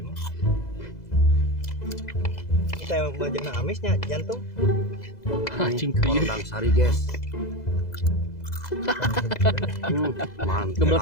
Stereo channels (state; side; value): late; right; 2.0 ms